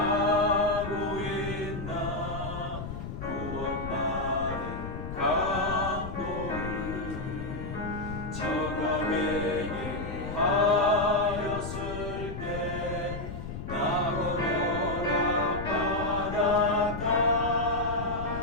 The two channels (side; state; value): left; noise; rumble, 7 dB below the sound